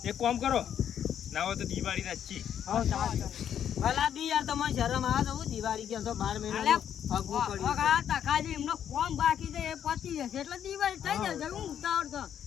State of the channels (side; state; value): right; quieter; 9.4 dB